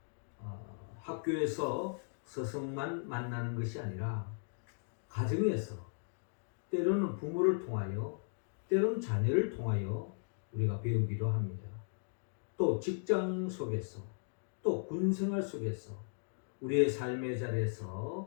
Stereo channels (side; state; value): right; silent; digital silence